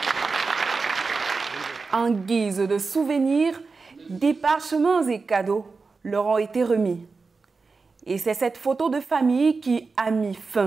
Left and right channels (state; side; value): quieter; left; 4.3 dB